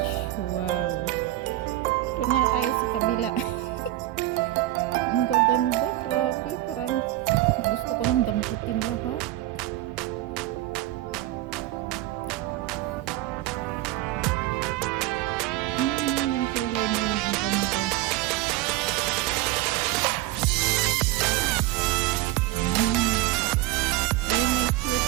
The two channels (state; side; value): quieter; left; 15.9 dB